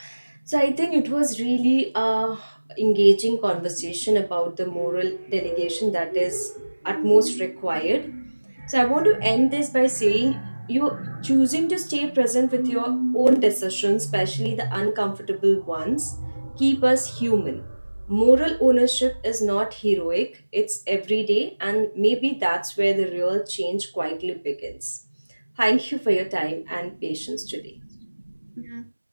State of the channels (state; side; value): inverted; both; correlation -1.00